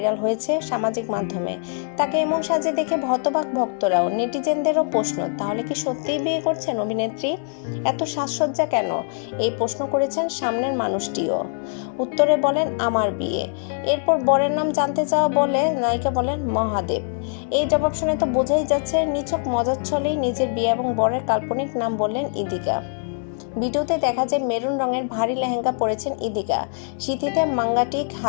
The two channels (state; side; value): silent; right; digital silence